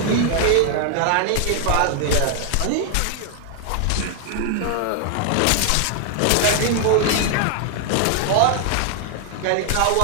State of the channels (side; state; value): both; different; correlation 0.00